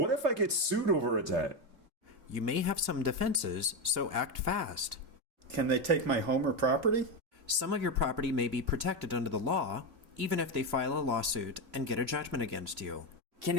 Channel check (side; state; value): left; late; 2.9 ms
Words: if I get sued over a debt? You may have some defenses, so act fast. Can they take my home or property? Some of your property may be protected under the law, even if they file a lawsuit and get a judgment against you. Can